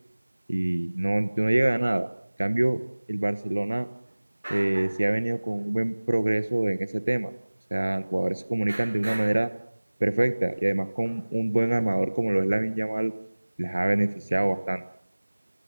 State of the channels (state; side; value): inverted; both; correlation -1.00